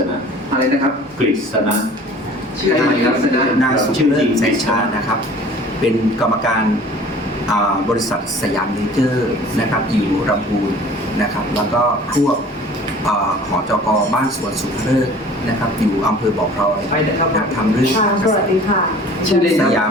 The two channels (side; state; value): both; normal; correlation 0.47